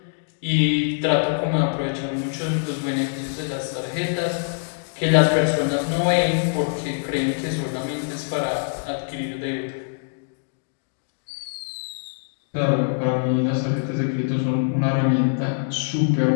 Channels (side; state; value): right; silent; digital silence